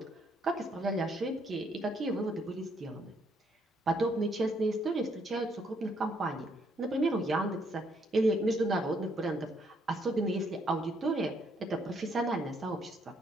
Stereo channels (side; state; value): both; normal; correlation 0.70